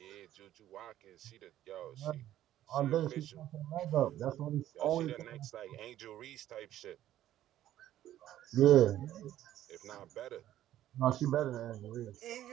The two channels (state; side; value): quieter; left; 12.7 dB